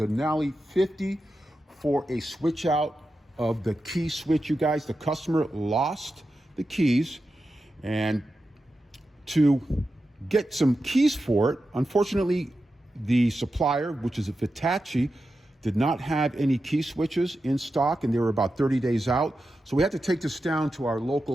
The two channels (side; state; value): both; normal; correlation 0.90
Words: 50 for a switch out of the key switch. You guys, the customer lost the keys, and to get some keys for it, unfortunately the supplier, which is a Vitacci, did not have any key switches in stock, and they were about 30 days out. So we had to take this down to our